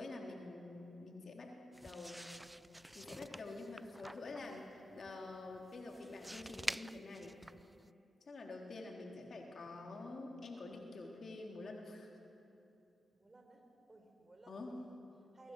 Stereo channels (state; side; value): normal; both; correlation 0.92